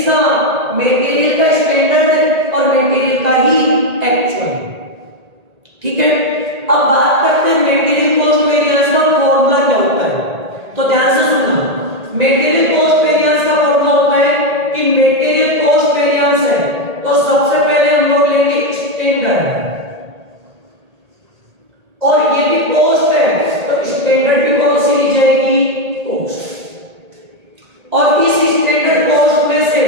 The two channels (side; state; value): left; late; 1.8 ms